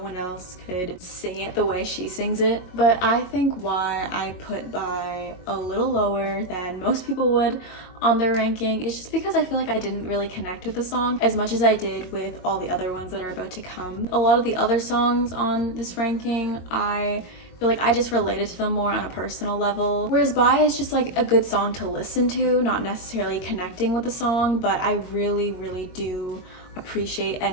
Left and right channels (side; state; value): right; late; 22 ms